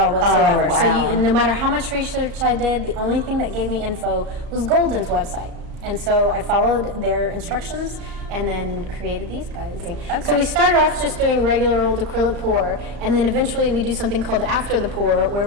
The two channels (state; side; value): late; left; 35 ms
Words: whatsoever. So no matter how much research I did, the only thing that gave me info was Golden's website. And so I followed their instructions and then created these guys. Okay. So we started off just doing regular old acrylic pour, and then eventually we do something called after the pour, where